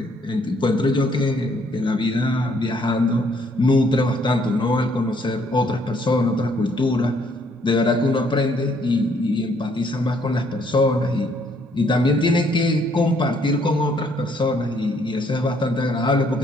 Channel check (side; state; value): both; normal; correlation 0.66